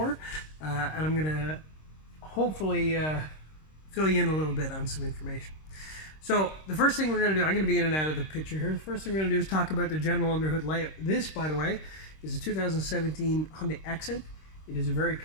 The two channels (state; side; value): late; right; 26 ms